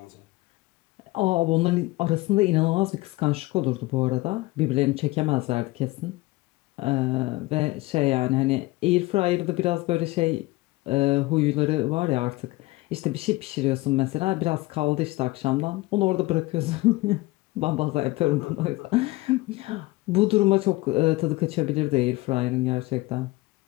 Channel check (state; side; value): quieter; right; 20.7 dB